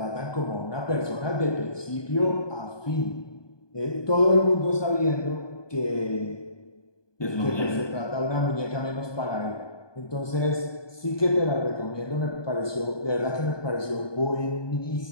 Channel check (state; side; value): late; right; 1.2 ms